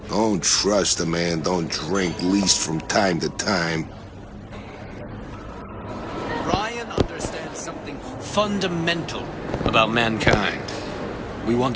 Don't trust a man, don't drink, least from time to time. Ryan understands something fundamental about mankind. We want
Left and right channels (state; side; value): identical; both; correlation 1.00